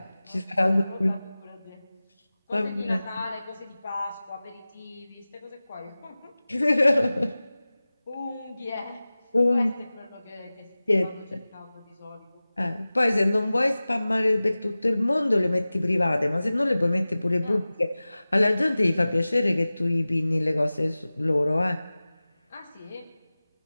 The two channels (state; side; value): inverted; both; correlation -0.97